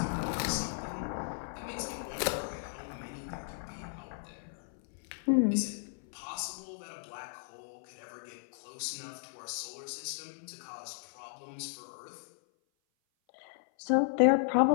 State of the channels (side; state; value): right; silent; 54 dB below the other